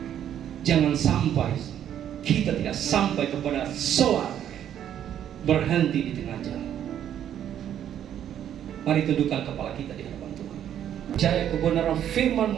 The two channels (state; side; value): quieter; left; 10.2 dB